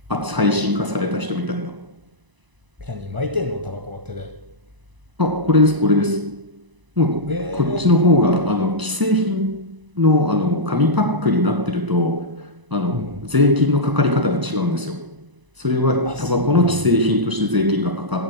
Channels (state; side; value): late; left; 1.0 ms